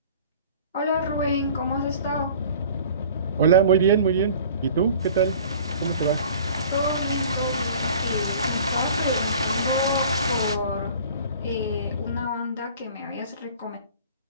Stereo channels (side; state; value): both; inverted; correlation -0.46